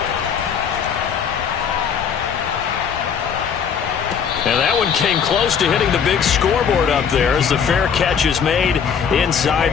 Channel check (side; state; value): right; quieter; 7.1 dB